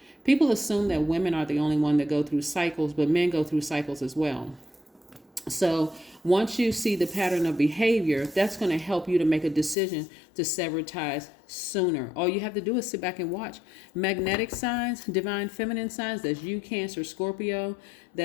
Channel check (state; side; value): drops out; right; at 9.8 s